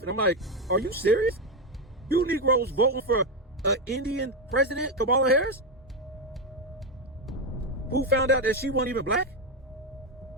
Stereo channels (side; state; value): both; normal; correlation 0.08